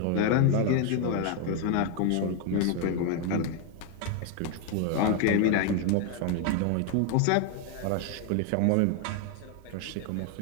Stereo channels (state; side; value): different; both; correlation 0.01